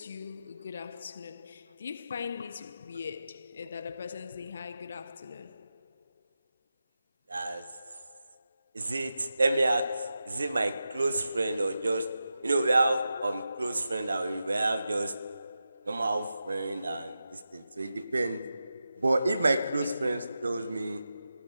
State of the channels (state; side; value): inverted; both; correlation -0.90